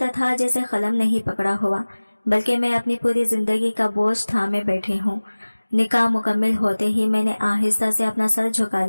था जैसे कलम नहीं पकड़ा हुआ, बल्कि मैं अपनी पूरी जिंदगी का बोझ थामे बैठी हूँ। निकाह मुकम्मल होते ही मैंने आहिस्ता से अपना सर झुका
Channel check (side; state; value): both; inverted; correlation -1.00